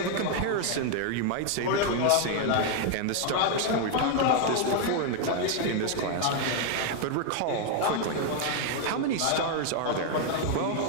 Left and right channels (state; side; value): different; both; correlation 0.00